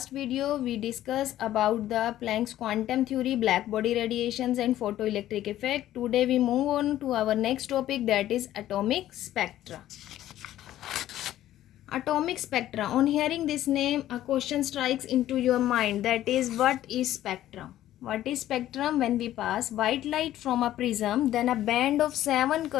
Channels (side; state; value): right; quieter; 13.2 dB